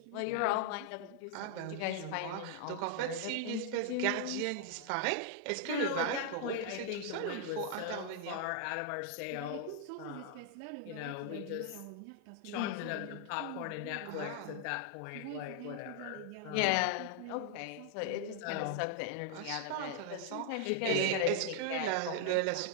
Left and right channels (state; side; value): different; both; correlation 0.00